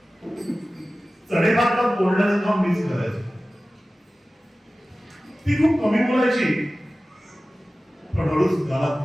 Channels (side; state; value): both; normal; correlation 0.96